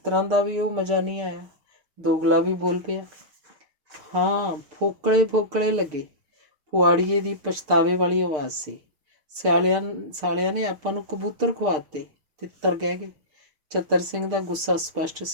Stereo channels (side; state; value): left; late; 6.7 ms